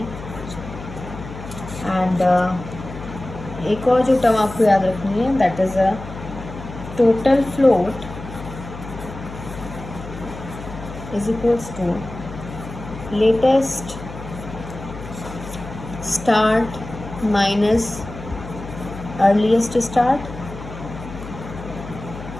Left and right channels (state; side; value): noise; left; hum, 12 dB below the sound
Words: And एक और जो टर्म आपको याद रखनी है, that is a total float is equals to latest start minus earliest start,